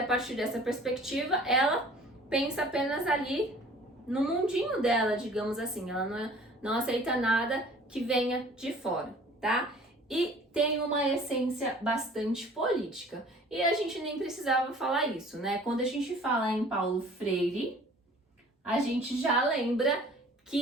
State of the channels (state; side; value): normal; both; correlation 0.50